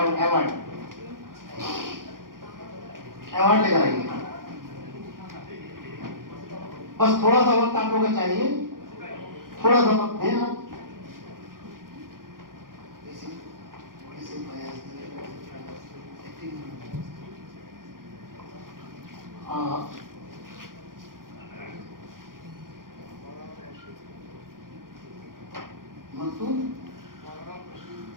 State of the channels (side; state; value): left; late; 0.91 ms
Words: अवार्ड लेकर आइए। बस थोड़ा सा वक्त आप लोगों को चाहिए, थोड़ा सा वक्त दें आप।